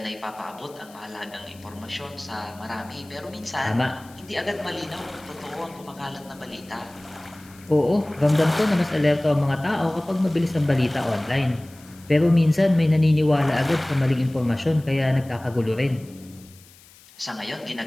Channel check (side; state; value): left; noise; hiss, 24 dB below the sound